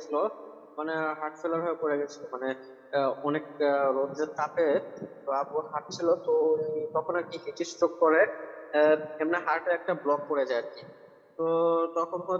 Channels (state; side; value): identical; both; correlation 1.00